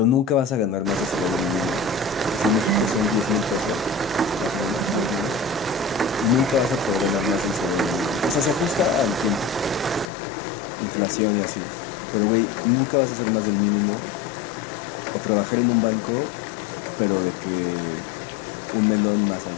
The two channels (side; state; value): right; drops out; at 10.1 s